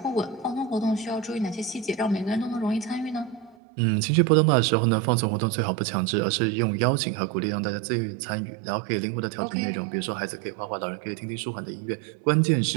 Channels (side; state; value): left; drops out; at 3.6 s